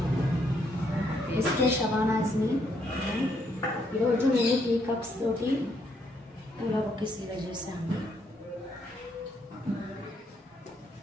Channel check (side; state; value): both; normal; correlation 0.73